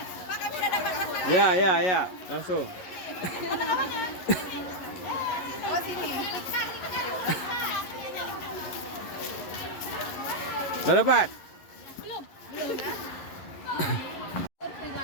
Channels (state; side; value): late; right; 11 ms